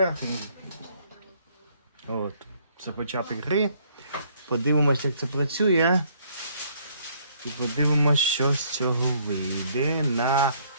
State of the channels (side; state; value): both; inverted; correlation -0.64